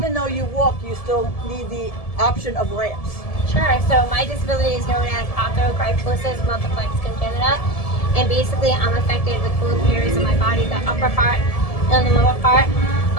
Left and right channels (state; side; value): late; right; 1.7 ms